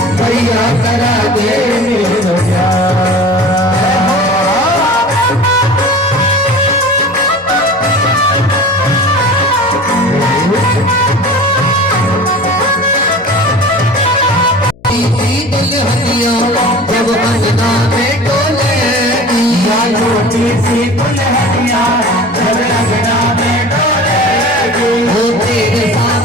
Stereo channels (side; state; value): left; noise; hum, 26 dB below the sound